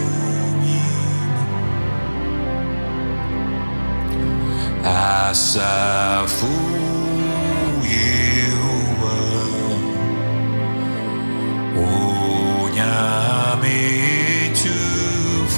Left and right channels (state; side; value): inverted; both; correlation -1.00